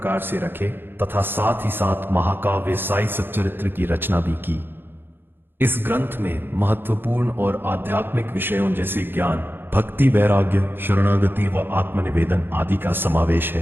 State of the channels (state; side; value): late; left; 0.10 ms